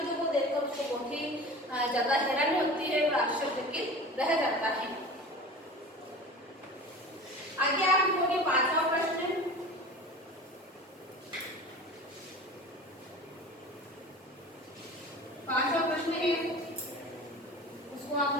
को देखकर उसको बहुत ही ज्यादा हैरानी होती है और आश्चर्यचकित रह जाता है। आगे आप लिखोगे 5वां प्रश्न। 5वां प्रश्न है, उसको आप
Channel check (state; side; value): normal; both; correlation 0.36